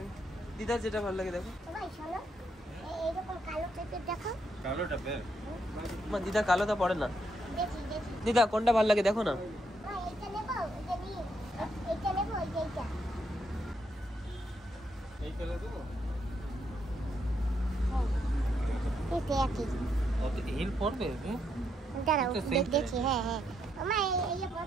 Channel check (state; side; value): normal; both; correlation 0.77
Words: দিদার যেটা ভালো লাগে দেখো। সবাই শোনো, এইরকম কালো টাইপের দেখো। কালোটা বের মা, দিদা কালোটা পড়ে না। দেখি দেখি। দিদা কোনটা ভালো লাগে দেখো না। এইটা নেবো, এটা নিয়ে এইটা নেবো, এইটা। এই কালার দেবো। এটা একই। কত হিল পড়বে? দাঁড়াও, এটা same দেখছি। হ্যাঁ হ্যাঁ, আমা এই